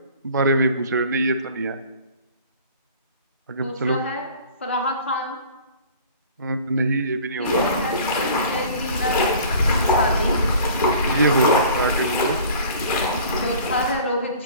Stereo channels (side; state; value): both; inverted; correlation -0.46